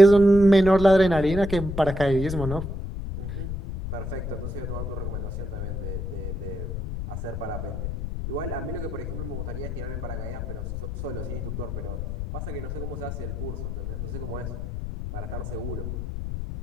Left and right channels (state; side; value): noise; left; rumble, 5 dB below the sound